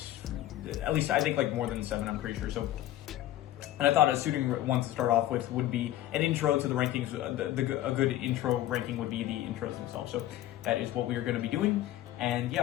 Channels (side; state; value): right; quieter; 13.8 dB